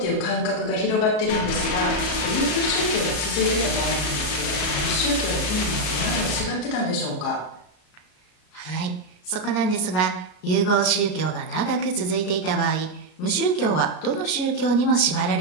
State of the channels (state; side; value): late; right; 33 ms